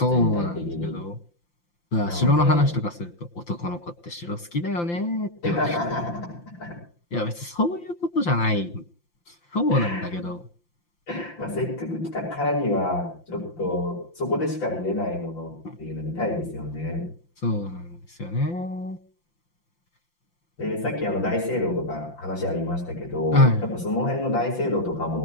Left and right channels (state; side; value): late; right; 5.8 ms